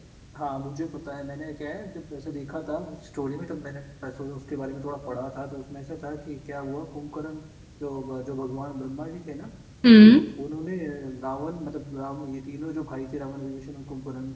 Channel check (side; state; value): both; identical; correlation 1.00